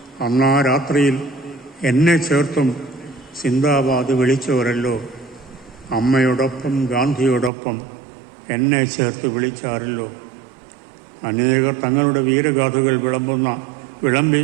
അന്നാ രാത്രിയിൽ എന്നെ ചേർത്തും സിന്ദാബാദ് വിളിച്ചവരല്ലോ. അമ്മയോടൊപ്പം ഗാന്ധിയോടൊപ്പം എന്നെ ചേർത്ത് വിളിച്ചാരല്ലോ. അനേകർ തങ്ങളുടെ വീരഗാഥകൾ വിളമ്പി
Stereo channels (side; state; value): left; drops out; at 7.5 s